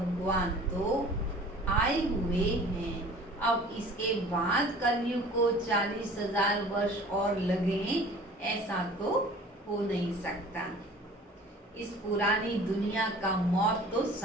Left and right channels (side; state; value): both; normal; correlation 0.46